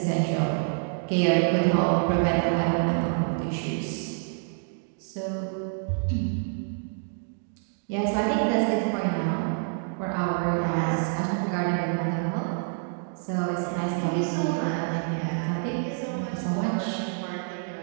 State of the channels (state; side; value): silent; left; 60 dB below the other